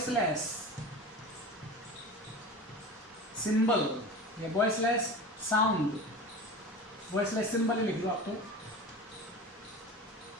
सिंबल या वॉइसलेस साउंड वॉइसलेस सिंबल ही लिख दो आप तो,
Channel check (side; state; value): both; normal; correlation 0.33